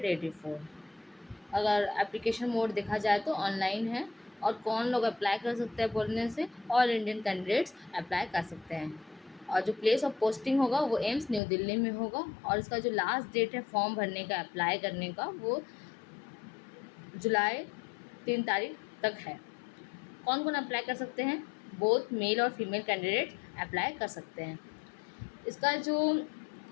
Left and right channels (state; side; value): drops out; right; at 11.4 s